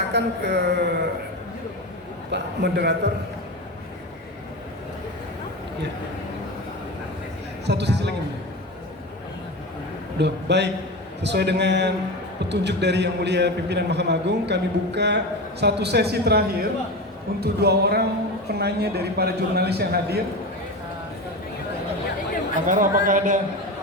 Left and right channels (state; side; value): normal; both; correlation 0.24